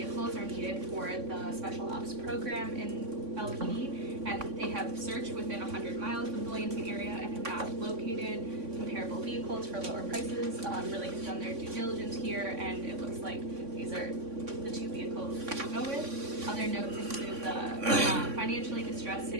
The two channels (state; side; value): late; left; 3.6 ms